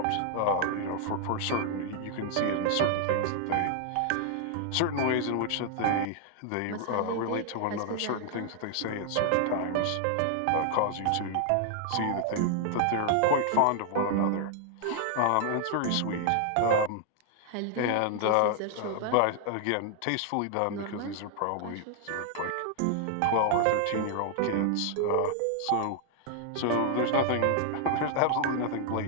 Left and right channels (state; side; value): different; both; correlation 0.00